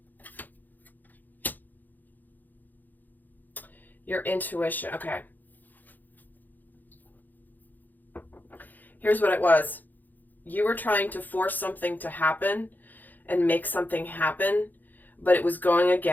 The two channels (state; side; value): late; right; 0.085 ms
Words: your intuition. Okay. Here's what it was. You were trying to force something to happen and make something happen, but it was going